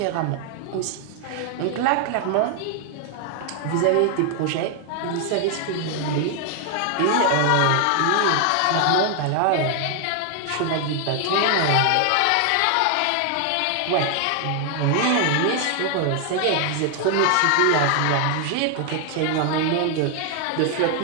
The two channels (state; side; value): different; both; correlation 0.00